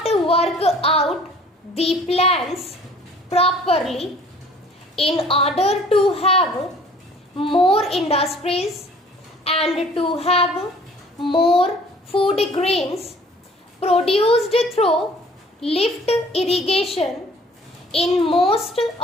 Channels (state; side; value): normal; both; correlation 0.53